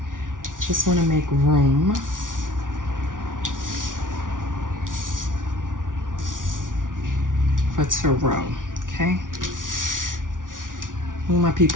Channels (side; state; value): left; late; 0.88 ms